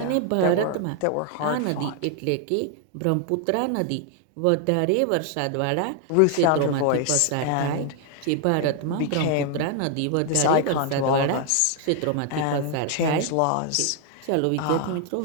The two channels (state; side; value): different; both; correlation 0.00